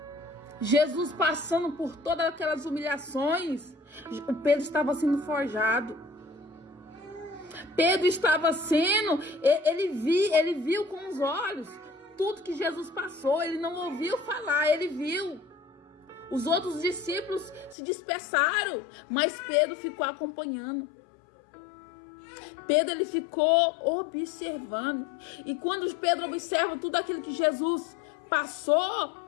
Jesus passando por todas aquelas humilhações, o Pedro estava sendo forjado. Pedro estava sendo, ele viu com os olhos tudo que Jesus passou. Ele não ouviu falar, ele viu. Os outros discípulos se dispersaram, mas Pedro ficou acompanhando. Pedro, ele ficou observando. E quando Pedro observa tudo aquilo que Jesus passou,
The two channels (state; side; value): drops out; right; at 17.8 s